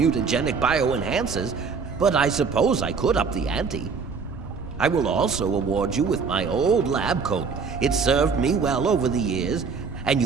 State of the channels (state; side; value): quieter; left; 5.3 dB